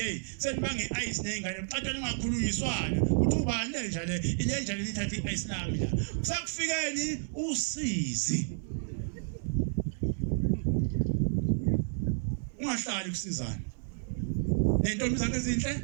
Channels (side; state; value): left; silent; digital silence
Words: senibanga i-ice ney'ngane bucatshana ungakhulunyiswana kuthi ubani lenja le nithatha i-ice lami la kusakufikeni usizi ungahlali kusizana nentombi zakhe ezinhle